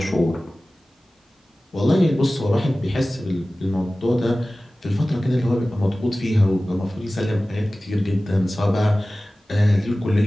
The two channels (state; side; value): normal; both; correlation 0.97